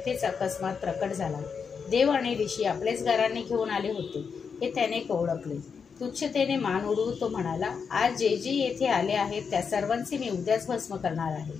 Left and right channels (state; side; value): quieter; right; 6.0 dB